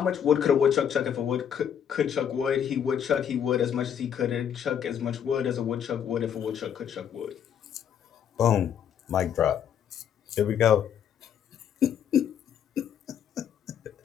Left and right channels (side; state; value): right; quieter; 8.7 dB